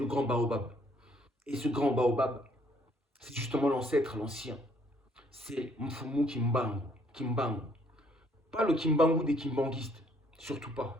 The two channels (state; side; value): normal; both; correlation 0.65